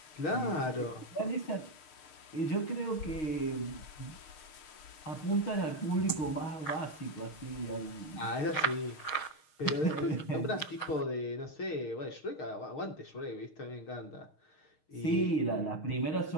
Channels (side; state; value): right; late; 6.4 ms